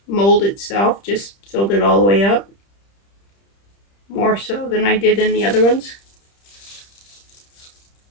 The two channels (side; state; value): right; late; 30 ms